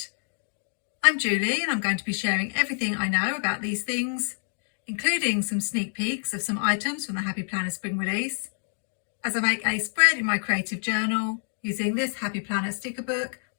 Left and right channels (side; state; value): right; silent; digital silence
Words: I'm Julie and I'm going to be sharing everything I know about these things, including some sneak peeks of some items from the Happy Planner spring release, as I make a spread in my creative journal using this Happy Planner sticker book,